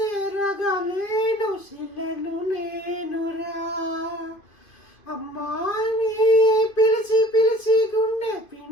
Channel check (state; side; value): late; right; 2.5 ms